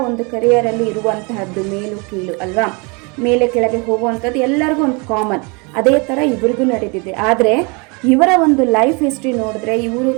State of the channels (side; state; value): left; quieter; 30.7 dB